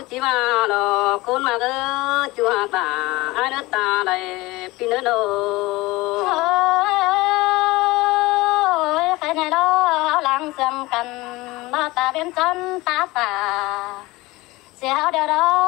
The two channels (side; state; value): right; quieter; 20.8 dB